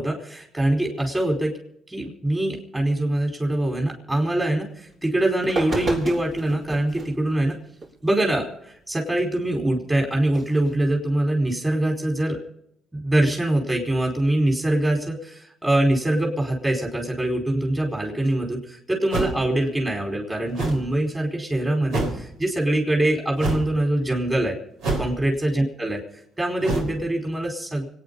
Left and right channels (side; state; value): both; normal; correlation 0.92